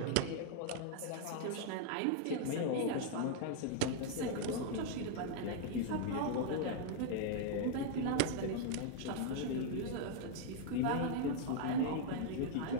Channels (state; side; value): different; both; correlation 0.00